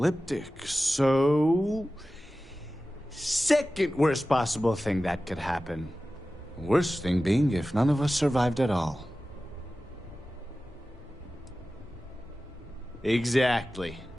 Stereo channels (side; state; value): both; normal; correlation 0.95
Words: so... second worst possible thing that could happen. Worst thing being if none of us survived at all. Exactly.